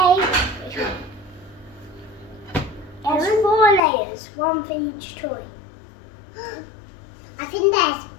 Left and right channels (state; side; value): drops out; right; at 3.8 s